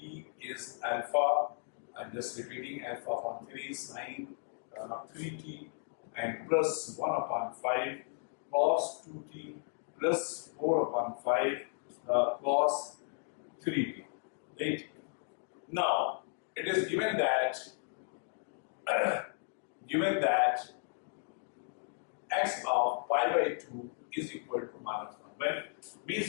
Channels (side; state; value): right; silent; 54 dB below the other